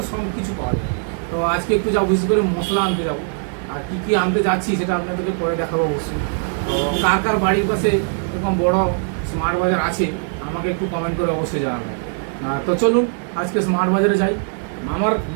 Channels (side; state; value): left; silent; 56 dB below the other